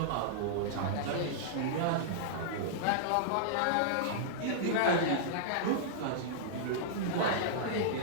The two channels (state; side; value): different; both; correlation -0.02